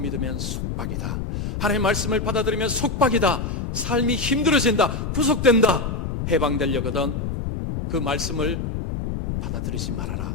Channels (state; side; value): noise; left; rumble, 3 dB below the sound